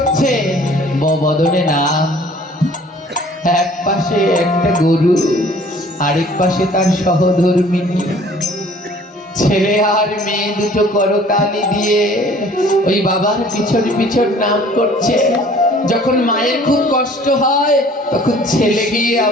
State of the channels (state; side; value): normal; both; correlation 0.53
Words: বদনে নাম। এক পাশে একটা গরু, আরেক পাশে তার সহধর্মিনী। ছেলে আর মেয়ে দুটো করতালি দিয়ে ওই বাবার পিছন পিছন নাম করছে। যখন মায়ের খুব কষ্ট হয়, তখন ছেলে গিয়ে